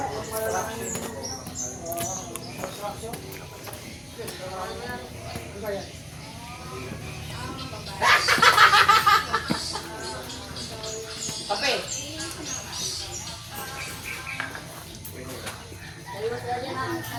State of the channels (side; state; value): both; identical; correlation 1.00